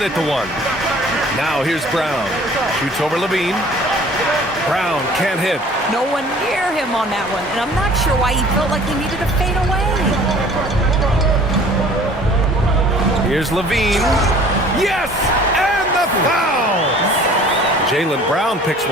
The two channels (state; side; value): normal; both; correlation 0.50